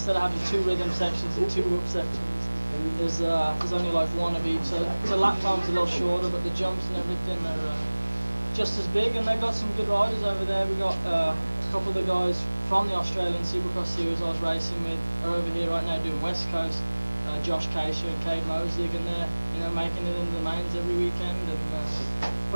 of having 2 rhythm sections and 2 whoop sections, there's only like 1 of each. So the lap time's a little shorter, but the jumps and everything are just as big. And they've got some good riders over there. We got a couple of the guys from the Australian Supercross series I was racing with are over here right now doing West Coast. Josh Casher and Cade Mosig, and they're making it into the mains every weekend and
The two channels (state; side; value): inverted; both; correlation -1.00